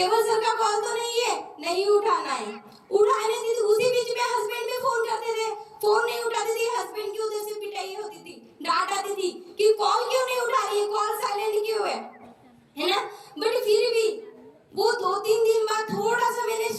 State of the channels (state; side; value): identical; both; correlation 1.00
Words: सर का कॉल तो नहीं है, नहीं उठाना है। उठाने दी थी, उसी बीच में हस्बैंड भी फोन करते थे, फोन नहीं उठाती थी, हस्बैंड की उधर से पिटाई होती थी, डांट आती थी कि कॉल क्यों नहीं उठा रही है, कॉल साइलेंट क्यों है ना। बट फिर भी वो 2-3 दिन बाद थोड़ा सा मैंने